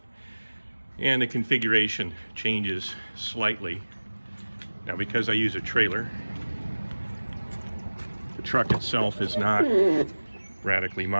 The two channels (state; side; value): inverted; both; correlation -1.00